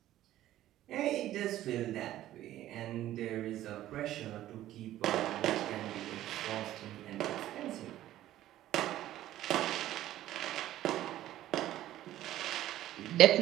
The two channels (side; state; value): left; quieter; 13.7 dB